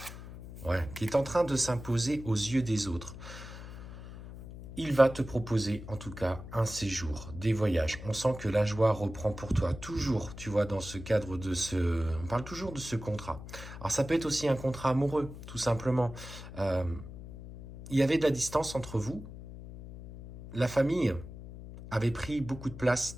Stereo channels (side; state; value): left; noise; hum, 13 dB below the sound